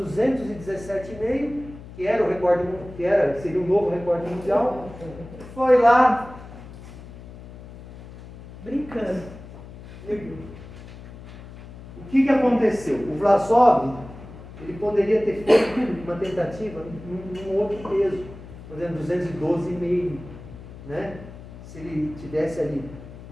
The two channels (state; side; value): noise; left; hum, 16 dB below the sound